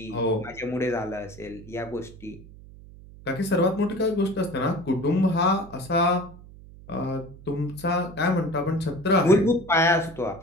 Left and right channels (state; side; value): noise; right; hum, 19 dB below the sound